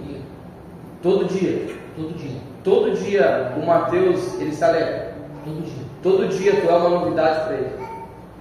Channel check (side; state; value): both; identical; correlation 1.00